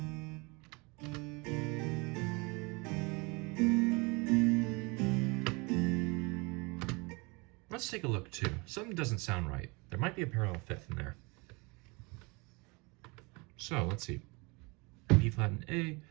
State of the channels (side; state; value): left; quieter; 27.9 dB